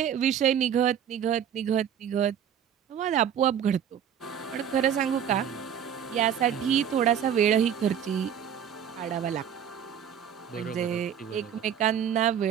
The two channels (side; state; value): left; quieter; 8.8 dB